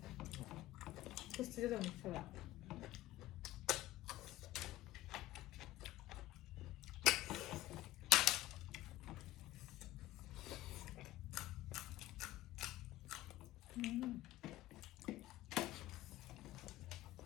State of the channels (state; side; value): quieter; right; 16.0 dB